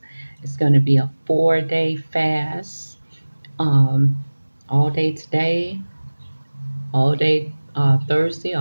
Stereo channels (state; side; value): inverted; both; correlation -1.00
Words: It's going to be a 4-day fast. Um, all day today, all day Thursday,